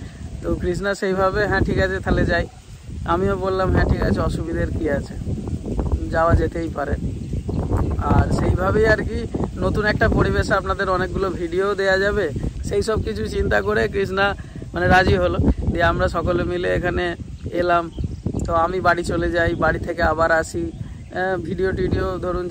তো কৃষ্ণা সেইভাবে হ্যাঁ ঠিক আছে তাহলে যাই, আমিও বললাম হ্যাঁ ঠিক আছে, অসুবিধার কি আছে, যাওয়া যেতেই পারে। আর সেইভাবেই আর কি নতুন একটা পরিবেশে আপনাদের অনেকগুলো ভিডিও দেয়া যাবে, সেই সব কিছু চিন্তা করে কৃষ্ণা মানে রাজি হলো। দিয়ে আমরা সকলে মিলে এখানে এলাম। তো আমি বাড়ি চলে যাই, বাড়ি থেকে আবার আসি, ভিডিও টিডিও ধরুন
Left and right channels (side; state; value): both; identical; correlation 1.00